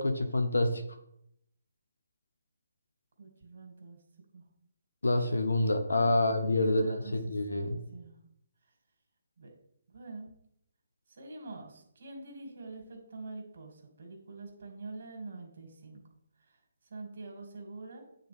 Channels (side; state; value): both; inverted; correlation -0.85